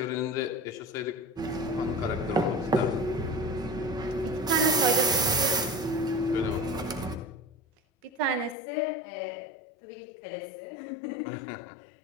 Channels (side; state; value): right; drops out; at 8.6 s